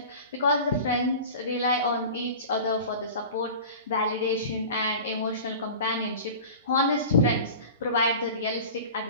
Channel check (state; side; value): inverted; both; correlation -0.36